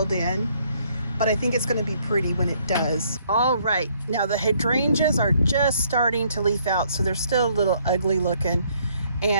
in, but I think it's going to be pretty when it does. All right, now the hydrangeas are just starting to leaf out, so they're still a little ugly looking.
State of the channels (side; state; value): both; inverted; correlation -0.67